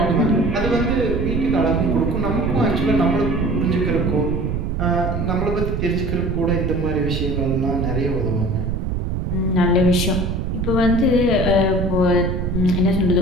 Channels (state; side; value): noise; right; rumble, 1 dB below the sound